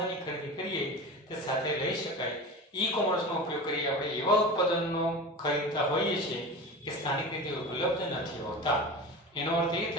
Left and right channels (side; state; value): both; normal; correlation 0.30